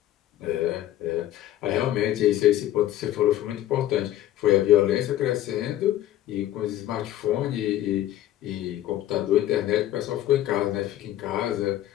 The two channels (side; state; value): right; quieter; 13.2 dB